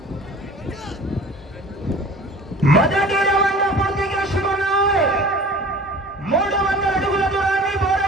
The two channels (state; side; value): normal; both; correlation 0.43